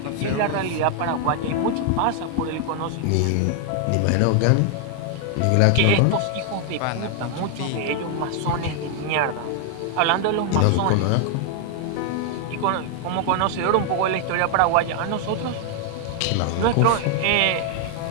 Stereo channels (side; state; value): both; different; correlation 0.00